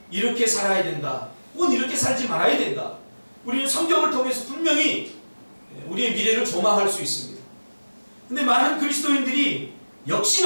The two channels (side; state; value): both; inverted; correlation -1.00